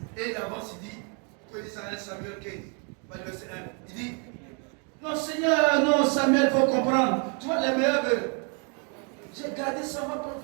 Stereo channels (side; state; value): left; quieter; 37.8 dB